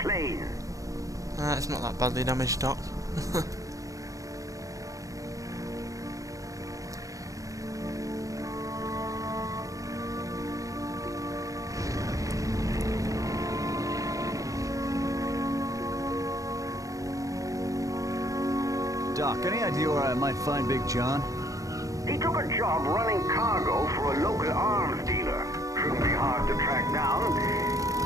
It's not that badly damaged, Doc. Doc, any idea where I might find Big John? He took a job running cargo for a local arms dealer. Shouldn't be hard to track down.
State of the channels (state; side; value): late; left; 0.16 ms